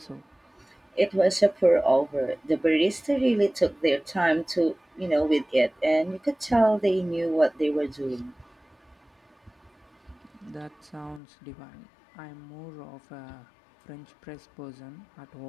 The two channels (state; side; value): drops out; right; at 11.2 s